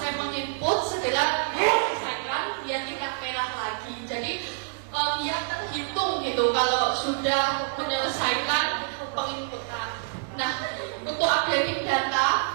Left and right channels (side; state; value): left; silent; digital silence